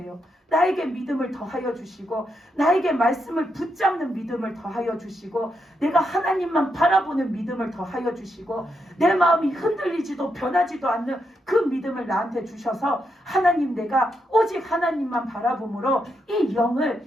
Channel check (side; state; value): both; normal; correlation 0.82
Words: 나에게 믿음을 더하여 주시고 나에게 말씀을 붙잡는 믿음을 더하여 주시고 내가 하나님만 바라보는 믿음을 더하여 주시고 내 마음이 흔들리지도 변하지도 않는 그 믿음을 나한테 주셔서 하나님, 내가 오직 하나님만 바라봄으로 이 영을